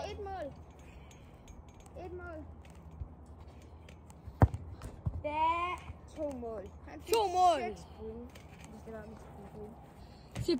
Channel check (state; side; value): identical; both; correlation 1.00